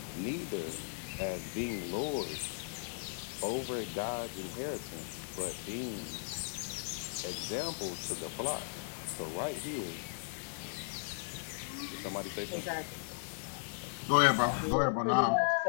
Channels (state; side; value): silent; right; 53 dB below the other